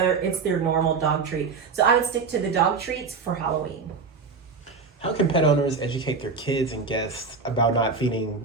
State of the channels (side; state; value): left; quieter; 4.8 dB